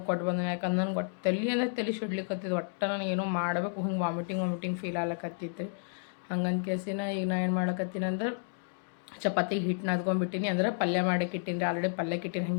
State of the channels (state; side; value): silent; right; digital silence